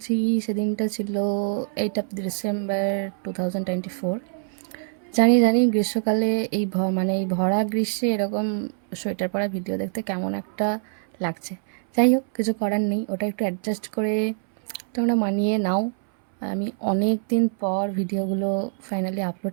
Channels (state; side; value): silent; left; 62 dB below the other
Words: সেদিনটা ছিল 8 ডিসেম্বর 2024। জানি জানি গ্রীষ্মকালে এই ভরা গ্রীষ্মে এরকম সোয়েটার পরা ভিডিও দেখতে কেমন একটা লাগছে। যাই হোক, কিছু করার নেই, ওটা একটু অ্যাডজাস্ট করে তোমরা মানিয়ে নাও। আমি অনেক দিন পর ভিডিওগুলো ফাইনালি